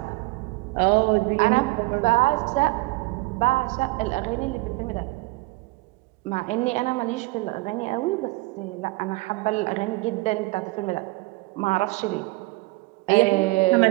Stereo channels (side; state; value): left; quieter; 22.8 dB